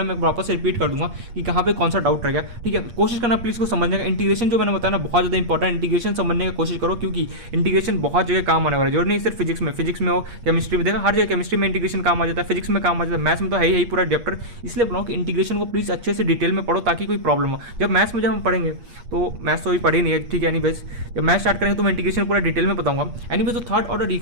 मैं वापस से रिपीट कर दूंगा कि कहाँ पे कौन सा डाउट रह गया। ठीक है, कोशिश करना प्लीज को समझने का। इंटीग्रेशन जो मैंने बताया ना बहुत ज़्यादा इंपॉर्टेंट, इंटीग्रेशन समझने की कोशिश करो, क्योंकि इंटीग्रेशन बहुत जगह काम आने वाला है। जरूर नहीं सिर्फ फिजिक्स में हो, केमिस्ट्री में देखा, हर जगह केमिस्ट्री में इंटीग्रेशन काम आ जाता है, फिजिक्स में काम आ जाता है, मैथ्स में तो है ही पूरा चैप्टर। इसलिए बोला कि इंटीग्रेशन को प्लीज अच्छे से डिटेल में पढ़ो ताकि कोई प्रॉब्लम हो। जब मैथ्स में हम पढ़ेंगे तो मैथ्स तो अभी पढ़ी नहीं है, ठीक है, एनीवेज जब मैथ स्टार्ट करेंगे तो मैं इंटीग्रेशन पूरा डिटेल में बताऊंगा। एनीवेज तो थर्ड ऑर्डर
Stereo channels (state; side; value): late; left; 8.5 ms